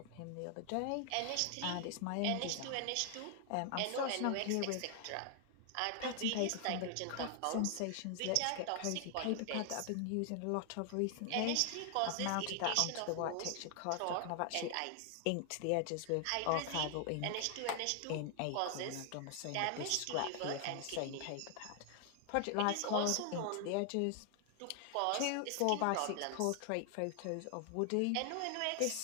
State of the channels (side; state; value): both; different; correlation 0.00